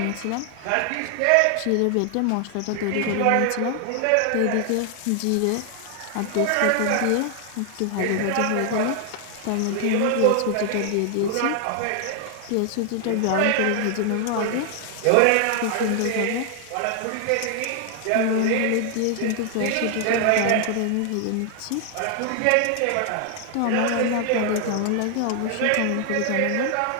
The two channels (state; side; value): different; both; correlation 0.00